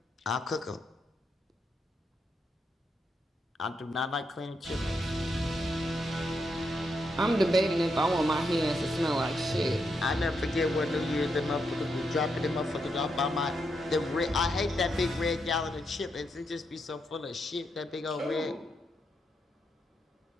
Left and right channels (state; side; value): normal; both; correlation 0.81